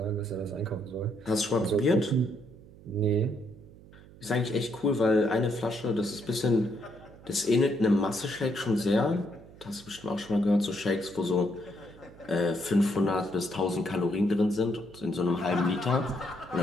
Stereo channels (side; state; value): right; noise; hum, 21 dB below the sound